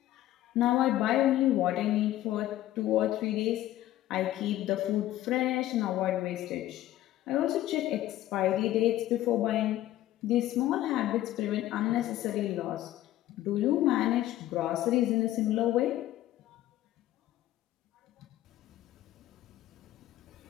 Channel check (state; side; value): quieter; right; 14.1 dB